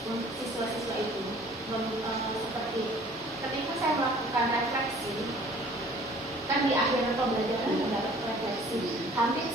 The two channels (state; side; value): normal; both; correlation 0.52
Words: untuk siswa-siswa itu. Seperti ketika saya melakukan refleksi, kan di akhir pembelajaran mendapat refleksi, hampir